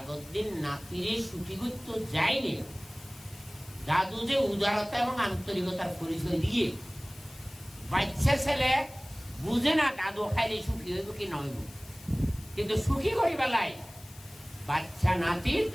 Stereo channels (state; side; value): noise; left; hiss, 20 dB below the sound